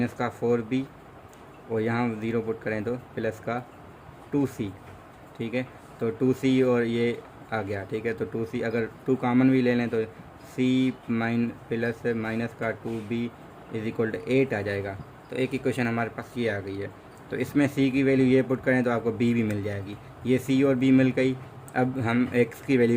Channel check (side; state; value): both; identical; correlation 1.00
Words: का 4b, और यहाँ 0 पुट करें तो प्लस का 2c। ठीक है, तो 2c और ये आ गया। ठीक है, तो 2c अगर 2 कॉमन भी ले लें तो c प्लस माइनस का 2b इज इक्वल टू 8 आ जाएगा। तो एक इक्वेशन हमारे पास ये आ गई है। तो इसमें c की वैल्यू ये पुट करें तो आपको b भी मिल जाएगी, ये c और b मिल गई। अब हम x की